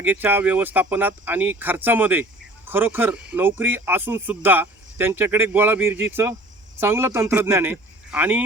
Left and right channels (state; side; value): normal; both; correlation 0.47